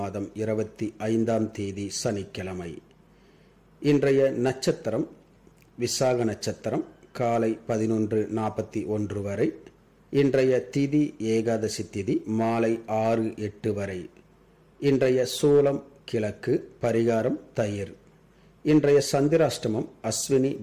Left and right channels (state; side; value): identical; both; correlation 1.00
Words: 25ஆம் தேதி சனிக்கிழமை. இன்றைய நட்சத்திரம் விசாக நட்சத்திரம் காலை 11:41 வரை. இன்றைய திதி ஏகாதசி திதி மாலை 6:08 வரை. இன்றைய சூலம் கிழக்கு, பரிகாரம் தயிர். இன்றைய சந்திராஷ்டமம் அஸ்வினி